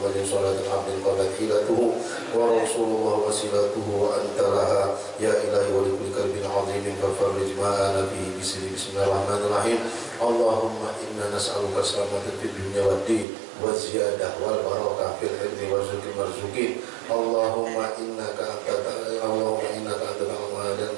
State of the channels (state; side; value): drops out; left; at 13.2 s